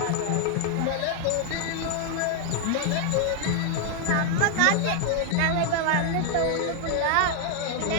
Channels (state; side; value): different; both; correlation 0.00